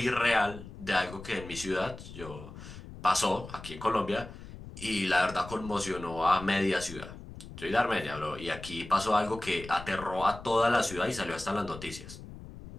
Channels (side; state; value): left; noise; rumble, 14 dB below the sound